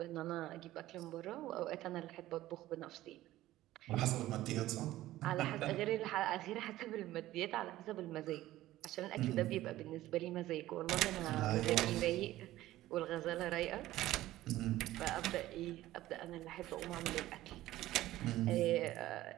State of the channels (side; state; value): left; quieter; 15.4 dB